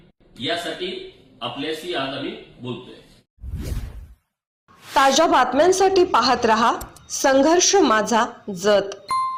यासाठी आपल्याशी आज आम्ही बोलतोय. ताज्या बातम्यांसाठी पाहत रहा संघर्ष माझा जत.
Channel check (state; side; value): identical; both; correlation 1.00